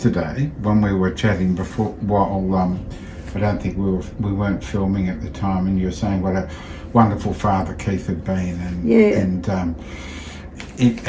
when we were chatting before, I don't think we weren't filming at the time, and you were saying what a wonderful father Keith had been, and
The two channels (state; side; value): identical; both; correlation 1.00